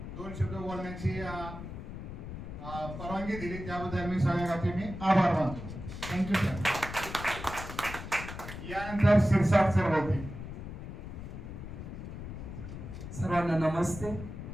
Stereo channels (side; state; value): left; noise; rumble, 9 dB below the sound